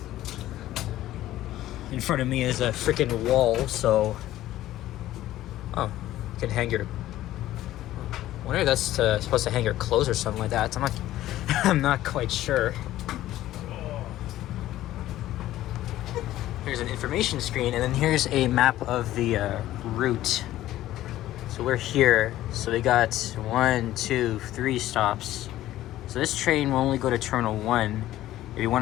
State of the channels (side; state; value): right; quieter; 14.3 dB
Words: in front of me is a freaking wall, so oh, you can hang your, I wonder if that's supposed to hang your clothes or something like that. I'm not quite sure. Here's an information screen, and then here's a map of the route. So we're here, so we got 1, 2, 3 stops. So this train will only go to Terminal 1. If you